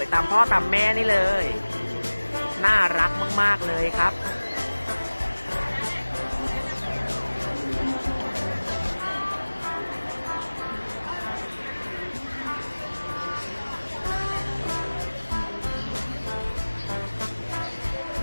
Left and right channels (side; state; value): both; inverted; correlation -1.00